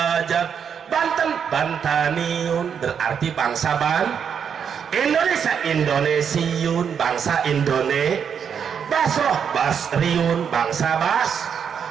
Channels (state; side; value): quieter; left; 7.4 dB